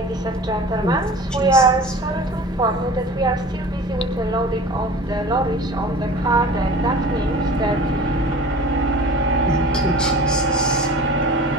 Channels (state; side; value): normal; both; correlation 0.39